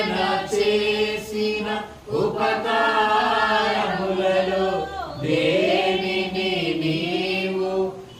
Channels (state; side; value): identical; both; correlation 1.00